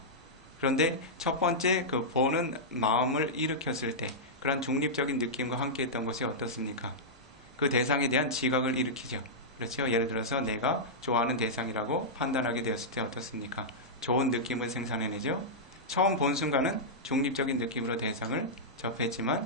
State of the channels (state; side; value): normal; both; correlation -0.10